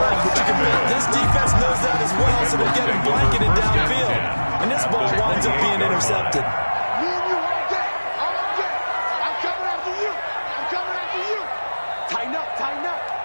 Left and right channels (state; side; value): inverted; both; correlation -1.00